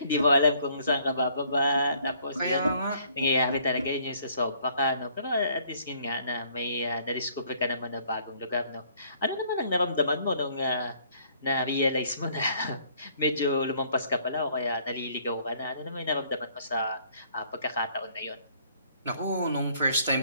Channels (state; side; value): inverted; both; correlation -0.62